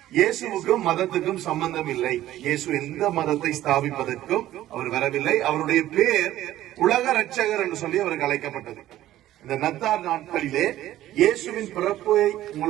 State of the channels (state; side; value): quieter; left; 13.9 dB